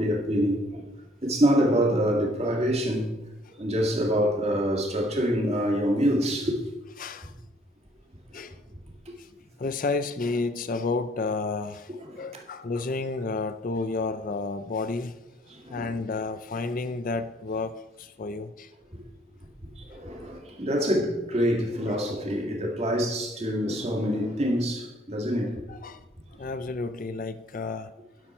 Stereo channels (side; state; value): both; normal; correlation 0.61